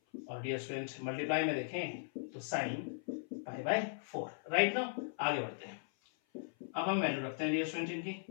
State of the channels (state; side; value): silent; right; 52 dB below the other